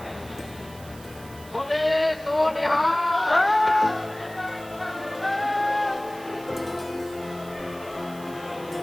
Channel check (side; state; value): right; noise; hiss, 20 dB below the sound